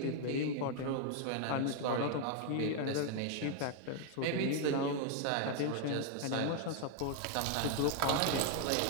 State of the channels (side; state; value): both; different; correlation 0.00